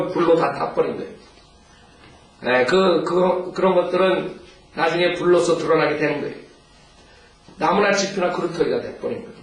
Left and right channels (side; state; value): both; identical; correlation 1.00